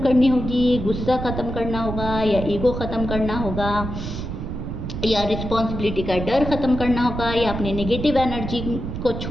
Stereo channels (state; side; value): noise; right; rumble, 6 dB below the sound